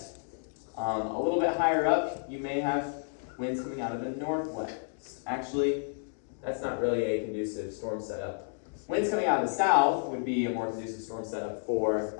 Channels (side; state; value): right; silent; digital silence